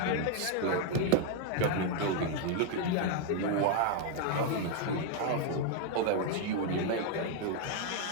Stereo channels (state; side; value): different; both; correlation 0.01